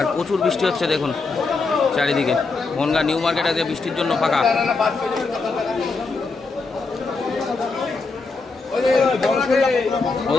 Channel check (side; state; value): right; quieter; 4.0 dB